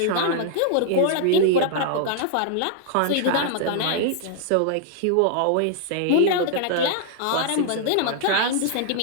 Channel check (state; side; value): different; both; correlation -0.01